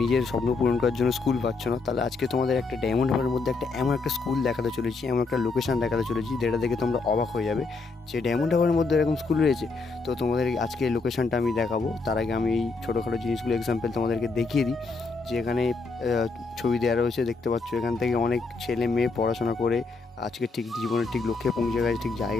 নিজের স্বপ্ন পূরণ করার জন্য স্কুল পাচ্ছ না? তাহলে আজকে তোমাদের একটা ডায়মন্ড হারবারের মধ্যে এমন একটা স্কুল দেখাতে চলেছি, এমন একটা লোকেশন দেখাতে চলেছি যেটা দেখে তোমরা অবাক হয়ে যাবে যে ডায়মন্ড হারবারের মধ্যে এরকম স্কুল রয়েছে। তো তোমাদের আজকে এই লোকেশনটা আমি দেখাবো। তার আগে আমি এই ছোটোখাটো জিনিসগুলো এক্সাম্পল তোমাদেরকে দেখিয়ে দিই যে এখানে ছবি দেওয়া রয়েছে, দেখতে পাচ্ছ। এখান থেকে অনেক ছেলে মেয়ে পড়াশোনা করে আজকে ঠিক জীবনের ঠিক লক্ষ্যে পৌঁছে গেছে, ঠিক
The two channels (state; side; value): quieter; right; 4.0 dB